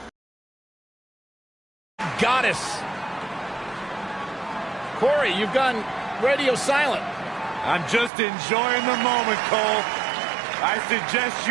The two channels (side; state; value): left; drops out; at 8.1 s